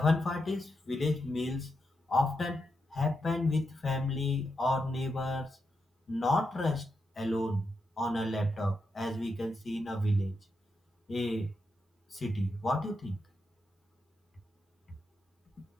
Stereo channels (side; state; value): both; normal; correlation 0.85